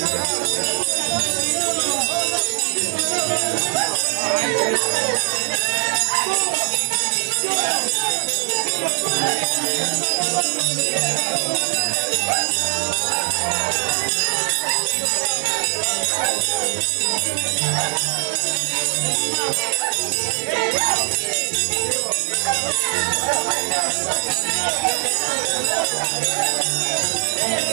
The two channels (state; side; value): silent; left; digital silence